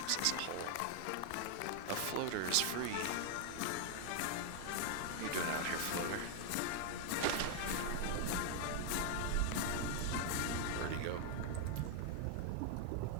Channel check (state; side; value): different; both; correlation 0.00